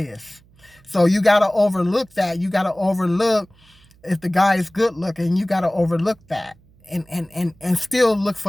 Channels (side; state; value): right; noise; hum, 29 dB below the sound